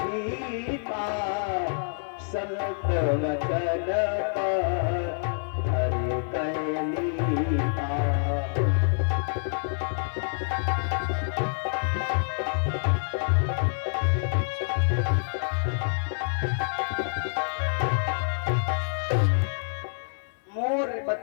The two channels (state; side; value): silent; right; digital silence